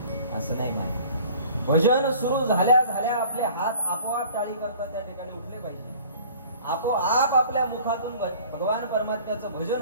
असं नाही माहिती. भजन सुरू झाल्या झाल्या आपले हात आपोआप टाळी करता त्या ठिकाणी उठले पाहिजे. आपोआप आपल्या मुखातून भगवान परमात्म्याचं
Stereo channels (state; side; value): inverted; both; correlation -0.48